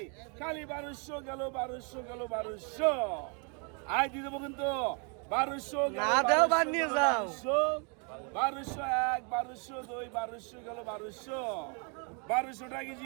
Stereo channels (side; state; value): left; quieter; 37.0 dB